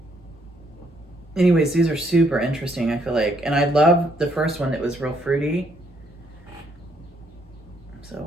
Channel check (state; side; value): normal; both; correlation 0.71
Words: Anyways, these are super interesting, I feel like, and I love the first one that was real fruity.